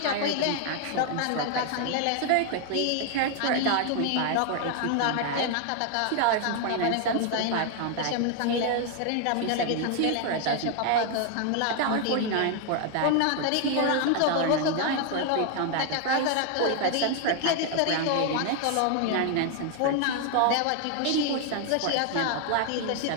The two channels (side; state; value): both; different; correlation 0.00